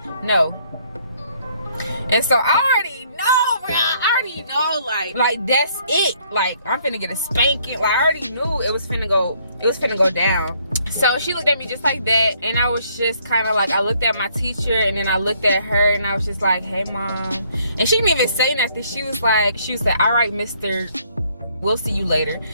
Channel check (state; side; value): inverted; both; correlation -0.65